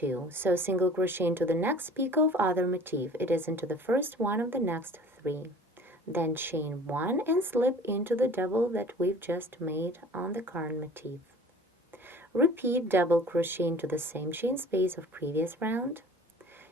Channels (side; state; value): both; normal; correlation 0.46